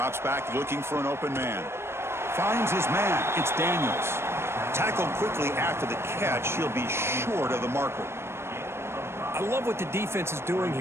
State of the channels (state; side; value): late; left; 0.12 ms